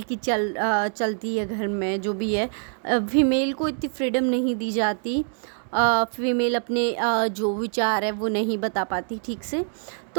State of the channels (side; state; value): left; silent; 59 dB below the other